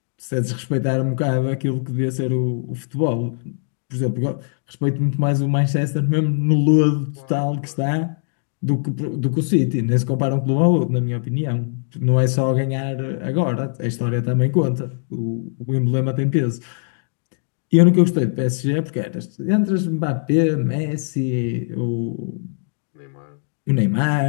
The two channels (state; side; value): silent; right; digital silence